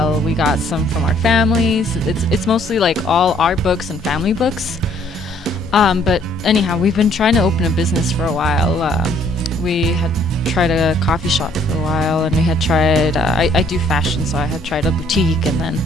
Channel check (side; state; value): both; normal; correlation 0.63